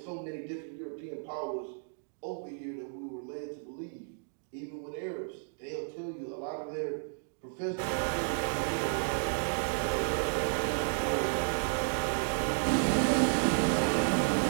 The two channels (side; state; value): left; silent; digital silence